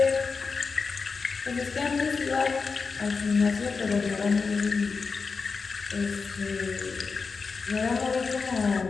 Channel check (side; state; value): right; quieter; 4.8 dB